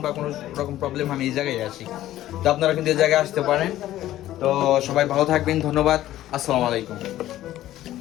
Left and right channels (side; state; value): right; quieter; 13.9 dB